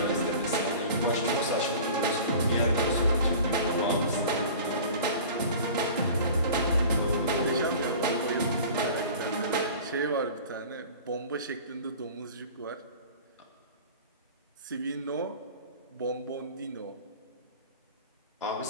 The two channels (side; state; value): both; inverted; correlation -0.40